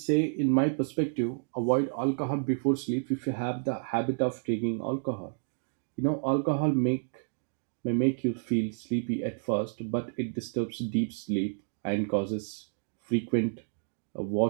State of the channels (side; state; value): left; silent; digital silence